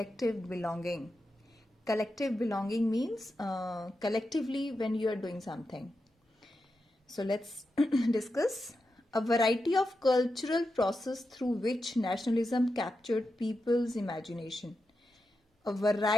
belonging. Collective belonging means collectively when you are doing something. So let's discuss a variety of cultural process through which nationalism captured people's imagination. A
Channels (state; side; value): normal; both; correlation 0.88